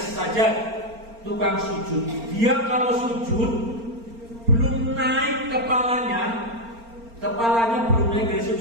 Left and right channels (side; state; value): left; late; 4.4 ms